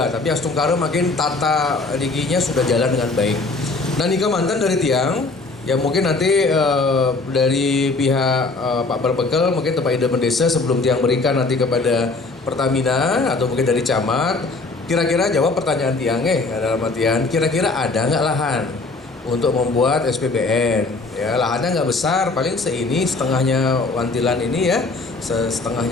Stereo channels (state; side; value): quieter; right; 3.6 dB